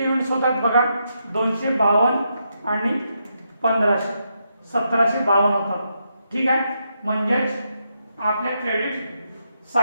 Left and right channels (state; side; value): inverted; both; correlation -0.81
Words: युनिट्स होतात बघा 252 आणि 1500 1752 होतात. ठीक आहे. म्हणजेच आपल्या क्रेडिट